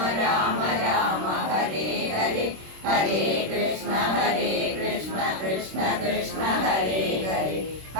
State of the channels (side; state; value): left; late; 26 ms